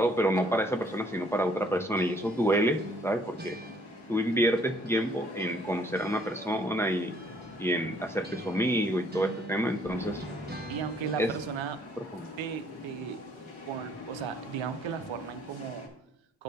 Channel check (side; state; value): both; normal; correlation 0.63